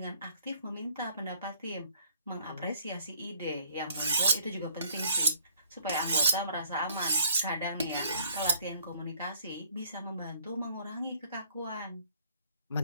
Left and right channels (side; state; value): both; inverted; correlation -0.60